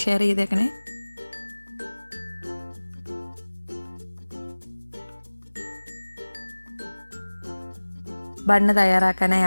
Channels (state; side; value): inverted; both; correlation -1.00